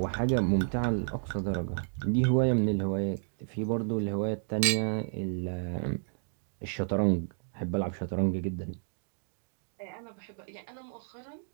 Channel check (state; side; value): silent; left; digital silence